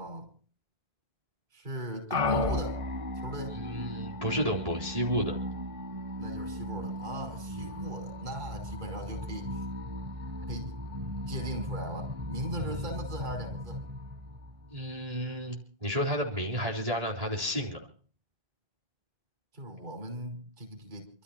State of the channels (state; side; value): late; left; 1.8 ms